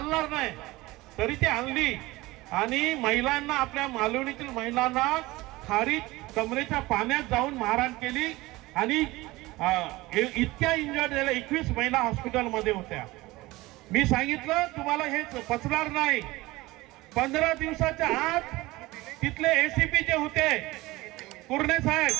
नाही, तरी ती आणली आणि महिलांना, आपल्या मालवणीतील महिलांना खारीत कमरेच्या पाण्यात जाऊन मारहाण केली आणि इतक्या इंजर्ड झाल्या. 21 महिला हॉस्पिटलमध्ये होत्या. मी सांगितलं तुम्हाला हे पचणार नाही. 15 दिवसाच्या आत तिथले एसीपी जे होते कुर्णे साहेब,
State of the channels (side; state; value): left; quieter; 20.0 dB